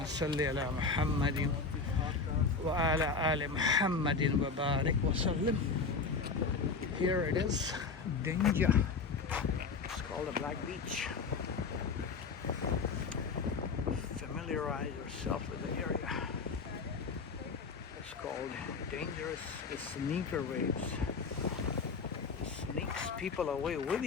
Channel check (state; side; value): quieter; right; 4.7 dB